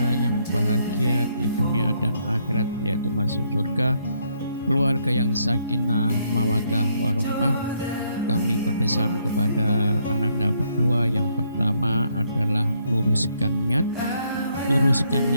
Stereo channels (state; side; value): inverted; both; correlation -0.72